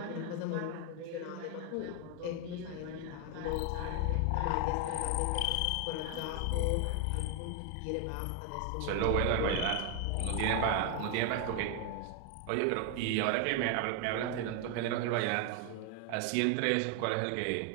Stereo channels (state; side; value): different; both; correlation 0.01